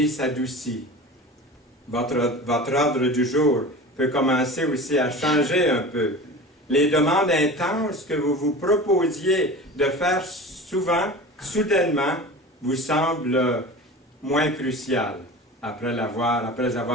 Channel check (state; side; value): normal; both; correlation 0.35